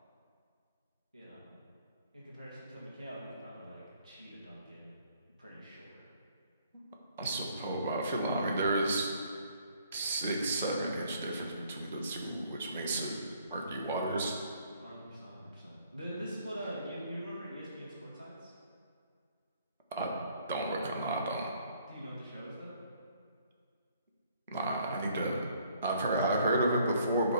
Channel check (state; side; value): inverted; both; correlation -0.63